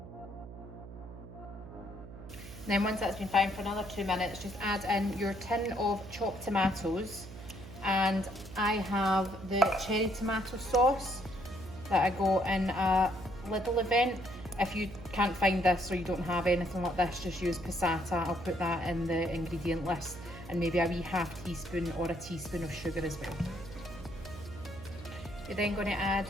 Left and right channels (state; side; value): noise; right; hum, 14 dB below the sound